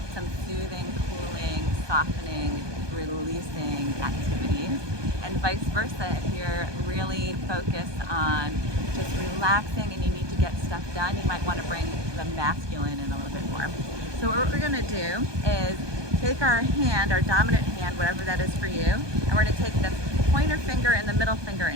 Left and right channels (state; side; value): late; left; 1.2 ms